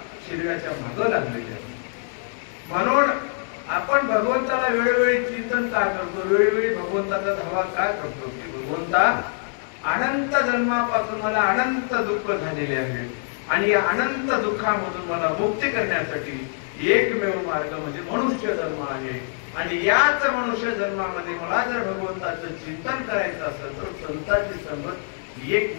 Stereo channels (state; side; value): silent; right; digital silence